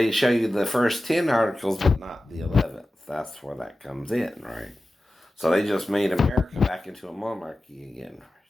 show you the first 10 articles, but not the 11th. That's where that comes in, right? So they just made America back into a monarchy again. Right?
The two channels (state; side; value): normal; both; correlation 0.94